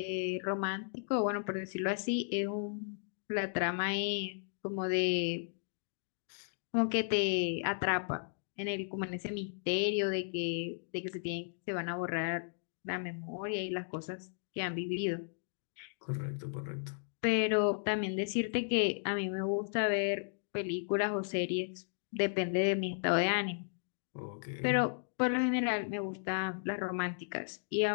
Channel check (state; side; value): silent; right; digital silence